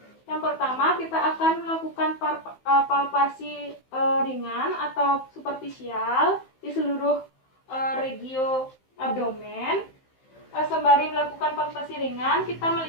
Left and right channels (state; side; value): late; right; 15 ms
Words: Yang pertama kita akan melakukan palpasi ringan atau superficial di seluruh regio abdomen. Sembari melakukan palpasi ringan, kita